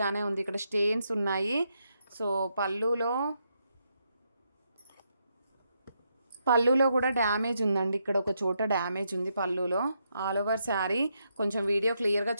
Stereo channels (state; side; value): inverted; both; correlation -0.80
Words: ఉంది, ఇక్కడ స్టెయిన్స్ ఉన్నాయి. సో పళ్ళులో కూడా డ్యామేజ్ ఉందండి, ఇక్కడ ఒక చోట డ్యామేజ్ ఉంది పళ్ళులో. ఆల్ ఓవర్ శారీ కొంచెం వీడియో క్లియర్గా